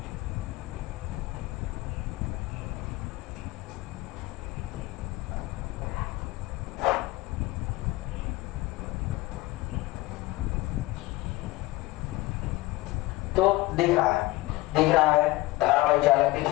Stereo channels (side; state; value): right; quieter; 19.8 dB